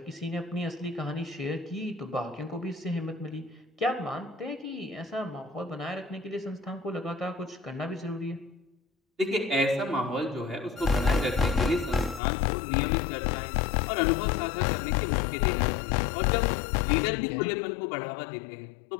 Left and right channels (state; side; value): drops out; right; at 12.2 s